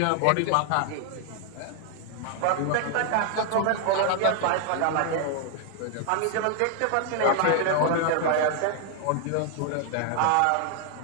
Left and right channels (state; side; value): different; both; correlation 0.00